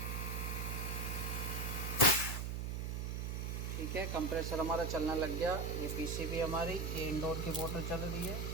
ठीक है, कंप्रेसर हमारा चलना लग गया। ये पीसीबी हमारी, ये इंडोर की मोटर चल रही है।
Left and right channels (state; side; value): noise; right; hum, 2 dB below the sound